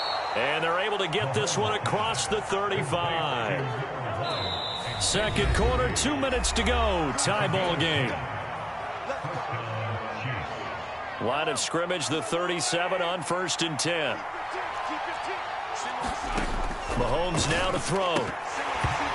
And they're able to get this one across the 35. 2nd quarter, 2 minutes to go. Tie ball game. Line of scrimmage, the 37 on 1st and 10. Mahomes now to throw.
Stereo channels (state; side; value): identical; both; correlation 1.00